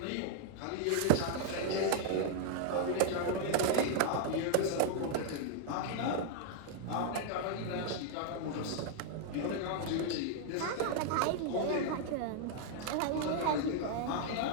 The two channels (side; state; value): both; different; correlation 0.00